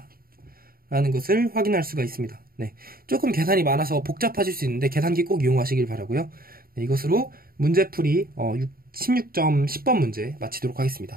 라는 것을 확인할 수가 있습니다. 네, 조금 계산이 많아서 복잡하실 수 있는데 계산기 꼭 이용하시길 바라고요. 네, 이것으로 문제풀이 16점 10번 문제 마치도록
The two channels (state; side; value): late; left; 0.43 ms